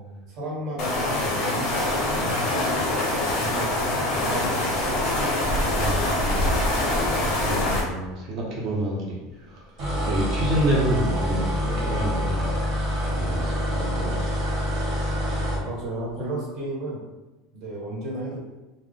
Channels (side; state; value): both; normal; correlation 0.44